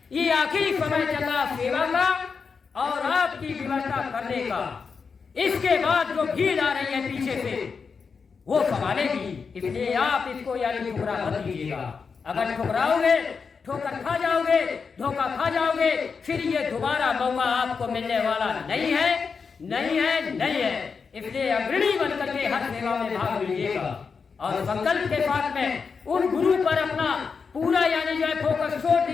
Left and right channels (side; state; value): right; quieter; 5.4 dB